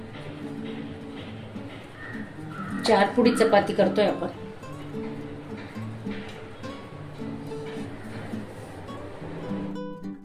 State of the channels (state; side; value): identical; both; correlation 1.00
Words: चार पुडी चपाती करतोय आपण.